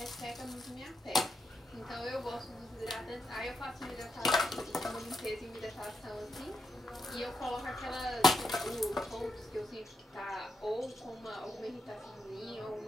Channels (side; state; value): both; normal; correlation 0.83